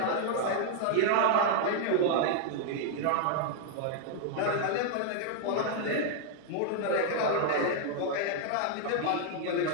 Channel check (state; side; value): different; both; correlation -0.01